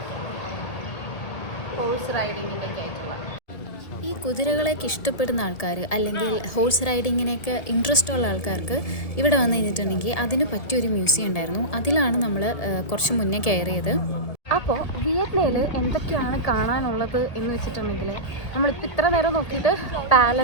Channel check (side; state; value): right; late; 1.7 ms